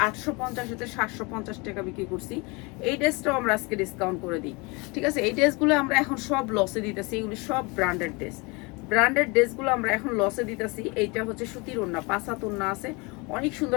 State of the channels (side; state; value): right; quieter; 27.6 dB